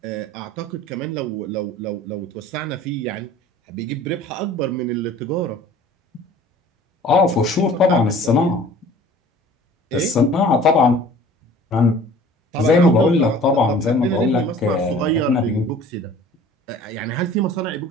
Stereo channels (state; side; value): normal; both; correlation 0.48